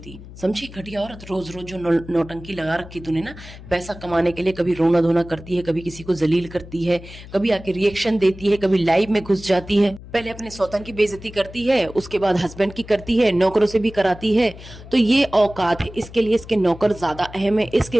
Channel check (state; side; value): noise; left; hum, 16 dB below the sound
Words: समझी? घटिया औरत, रोज जो नौटंकी लगा रखी तूने ना पैसा कमाने के लिए, कभी रोना धोना करती है, कभी किसी को जलील करती है, कभी आके रिएक्शन देती है, कभी लाइव में घुस जाती है, पहले अपने सौतन की बेइज्जती करती है, उसके बाद हस्बैंड की करती है, नौकरों से भी कराती है। तो ये औकात है, इसके लिए इसके नौकर ज्यादा अहम है,